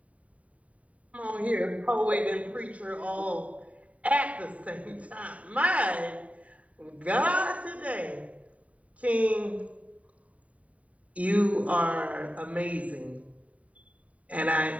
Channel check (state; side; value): late; left; 0.068 ms